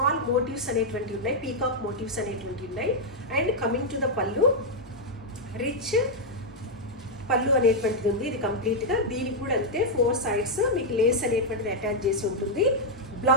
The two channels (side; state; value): both; normal; correlation -0.02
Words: మోటివ్స్ అనేటువంటివి ఉన్నాయి, పీకాక్ మోటివ్స్ అనేటువంటివి ఉన్నాయి. అండ్ కమింగ్ టు ద పళ్ళు, రిచ్ పళ్ళు అనేటువంటిది ఉంది. ఇది కంప్లీట్గా దీనికి కూడా అంతే 4 sides మీకు లేస్ అనేటువంటిది అటాచ్ చేసి ఉంటుంది.